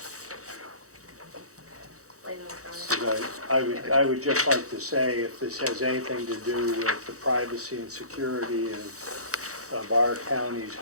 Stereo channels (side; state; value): left; late; 0.65 ms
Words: Leyland's got it. Because I would just like to say, if this has anything to do with the privacy and security of our county's